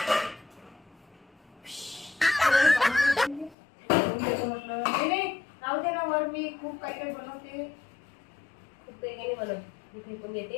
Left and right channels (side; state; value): right; drops out; at 3.6 s